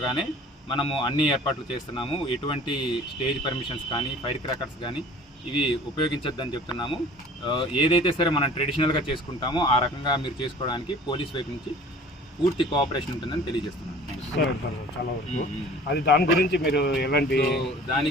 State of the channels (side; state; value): both; normal; correlation 0.46